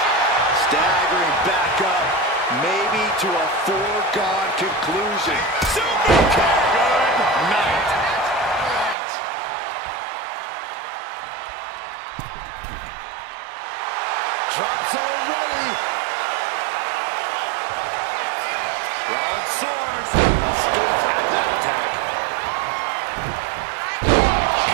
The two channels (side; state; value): left; drops out; at 9.0 s